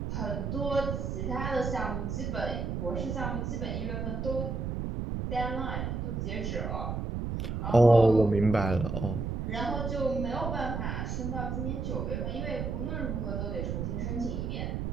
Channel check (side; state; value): right; noise; rumble, 2 dB below the sound